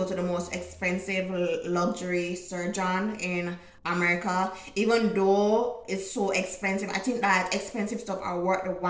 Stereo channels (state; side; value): identical; both; correlation 1.00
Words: to the most expensive luxury surgeon in America. Even though it's so expensive, I think that expensive stuff are worth the